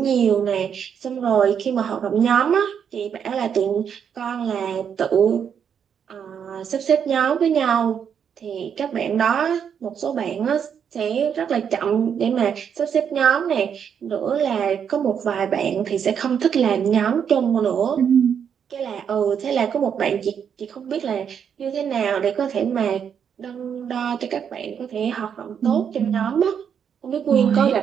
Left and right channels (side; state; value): left; quieter; 7.7 dB